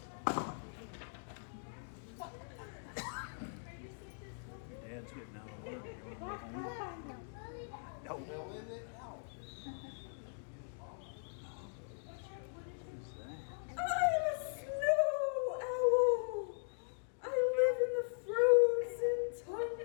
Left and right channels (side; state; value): right; silent; digital silence